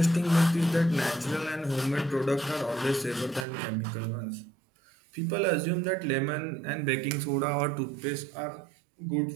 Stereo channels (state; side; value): drops out; left; at 3.5 s